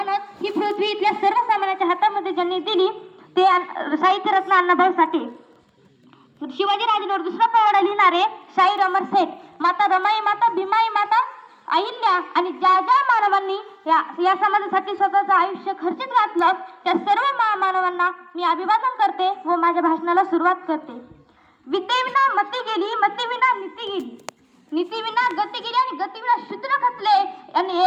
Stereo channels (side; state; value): both; identical; correlation 1.00